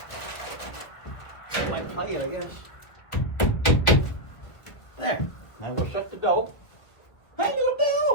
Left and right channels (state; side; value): late; right; 1.7 ms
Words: That might play it, I guess. There. Now we'll shut the door. Hey, little